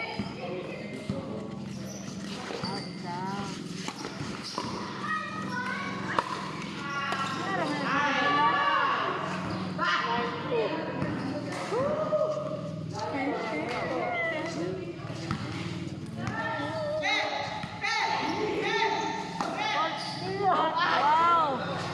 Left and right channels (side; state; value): both; identical; correlation 1.00